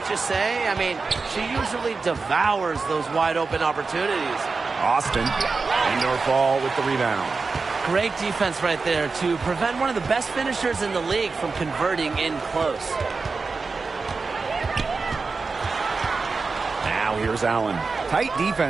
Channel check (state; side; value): quieter; left; 4.3 dB